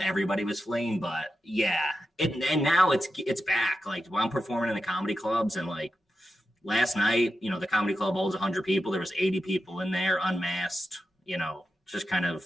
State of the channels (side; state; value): both; normal; correlation 0.89